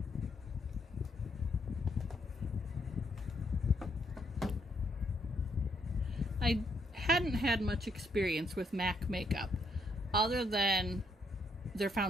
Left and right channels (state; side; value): normal; both; correlation 0.73